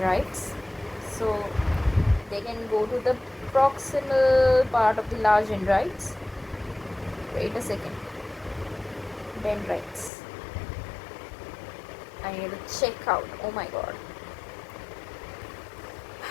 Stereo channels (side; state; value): right; drops out; at 10.1 s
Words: So they can go to the proximal part of the large dendrites. Wait a second. Dendrites. I need to check out. Oh my god.